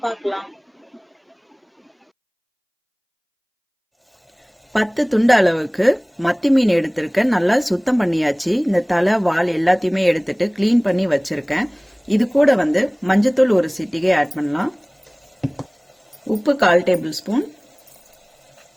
பார்க்கலாம். 10 துண்டு அளவுக்கு மத்தி மீன் எடுத்திருக்கேன். நல்லா சுத்தம் பண்ணியாச்சு. இந்த தலை வால் எல்லாத்தையுமே எடுத்துட்டு கிளீன் பண்ணி வச்சிருக்கேன். இது கூட மஞ்சத்தூள் ஒரு சிட்டிகை ஆட் பண்ணலாம். உப்பு 1/4 டேபிள் ஸ்பூன்,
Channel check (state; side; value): identical; both; correlation 1.00